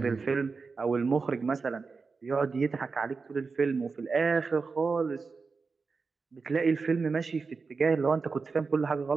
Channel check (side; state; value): left; quieter; 4.6 dB